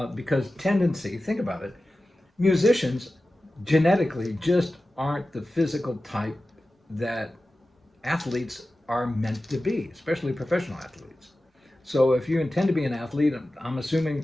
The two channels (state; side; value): normal; both; correlation 0.95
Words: Because tendency, think about it. Musicians genetically just aren't the physical type that athletes are meant to be, especially professional athletes. So if you intend to be an athlete, I'm assuming